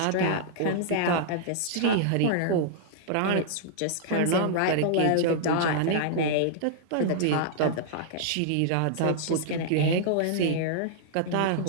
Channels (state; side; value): different; both; correlation -0.01